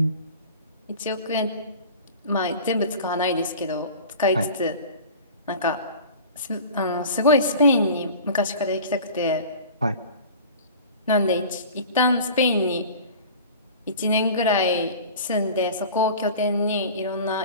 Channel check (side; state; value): both; inverted; correlation -0.39